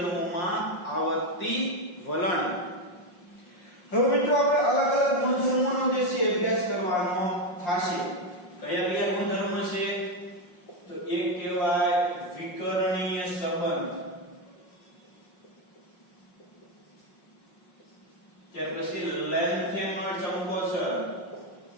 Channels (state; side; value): late; right; 5.5 ms